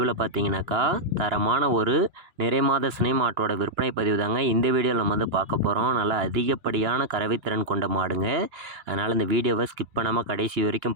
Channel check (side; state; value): left; late; 2.9 ms